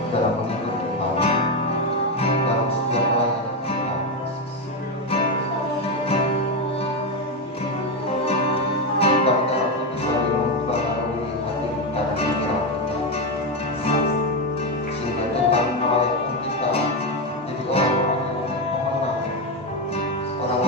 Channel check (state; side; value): normal; both; correlation 0.09